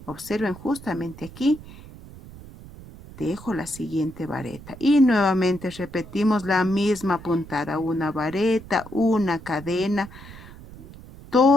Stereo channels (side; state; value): right; noise; rumble, 17 dB below the sound